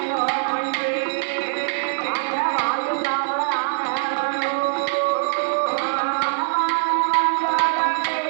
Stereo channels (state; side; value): silent; left; 60 dB below the other